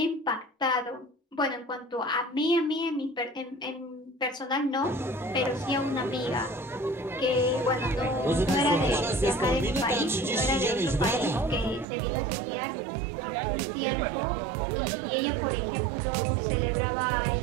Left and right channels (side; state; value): left; drops out; at 11.9 s